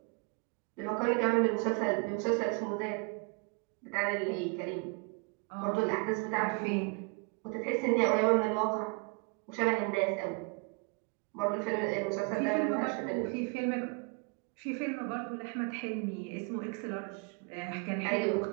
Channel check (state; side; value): quieter; left; 33.0 dB